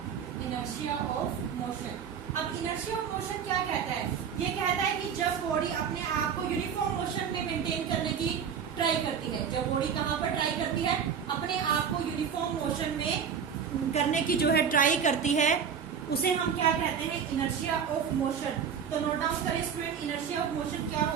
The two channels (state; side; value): quieter; left; 7.3 dB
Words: inertia of motion. अब इनर्शिया ऑफ मोशन क्या कहता है? ये कहता है कि जब बॉडी अपने आप को यूनिफॉर्म मोशन में मेंटेन करने की ट्राई करती है, जब बॉडी कहां पर ट्राई करती है? अपने आप को यूनिफॉर्म मोशन में करने की जो है ट्राई करती है, उसे हम क्या कहते हैं? Inertia of motion. तो नोट डाउन करें स्टूडेंट, इनर्शिया ऑफ मोशन क्या